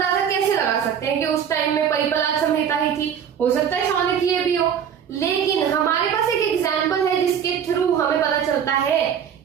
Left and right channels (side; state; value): left; quieter; 8.3 dB